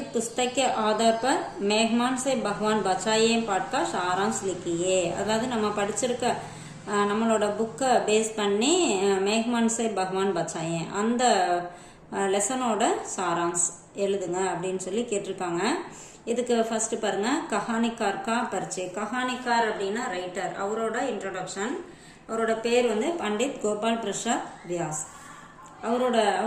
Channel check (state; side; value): identical; both; correlation 1.00